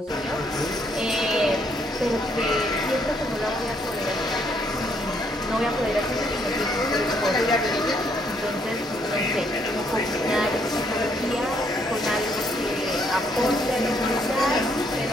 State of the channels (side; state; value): both; normal; correlation 0.70